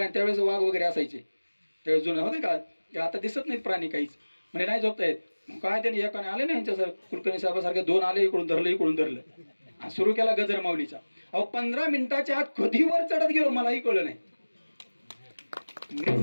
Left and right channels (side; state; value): both; inverted; correlation -1.00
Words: त्यावेळेस वाघ वगैरे असायचे, त्यावेळेस जुने होते का. ते आता दिसत नाहीत प्राणी काहीच. म्हणजे नाही झोपता येत. काय त्यांनी एकाने आले ना यांच्यासारखं, कुलकर्णी साहेबासारखे 2 आले, इकडून धरलं इकडून धरलं, सुरू केला गजर माऊलीचा. अहो 15 मिनिटाच्या आत कधी वर चढत गेलो मलाही कळलं नाही. मी